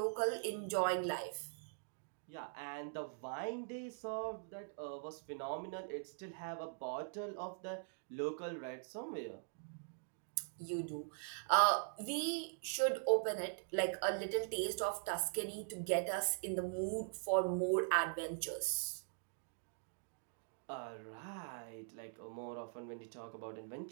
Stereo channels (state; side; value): silent; left; digital silence